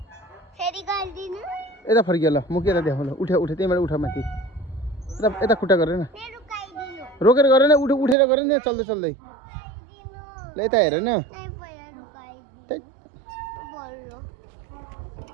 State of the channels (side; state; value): left; drops out; at 8.2 s